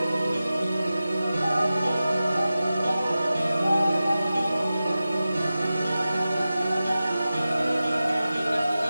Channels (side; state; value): both; inverted; correlation -0.94